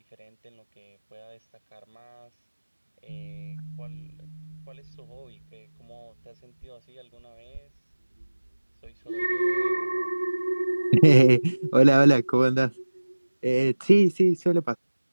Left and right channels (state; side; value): inverted; both; correlation -1.00